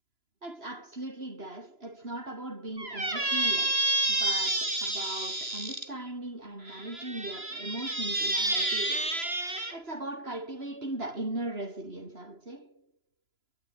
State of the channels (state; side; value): late; left; 2.9 ms